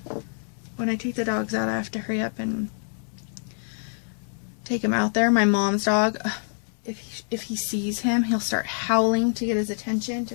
when I take the dogs out, I have to hurry up and take him out there. My mom's dog, if he sees him, he'll start howling to get his attention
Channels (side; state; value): right; silent; 59 dB below the other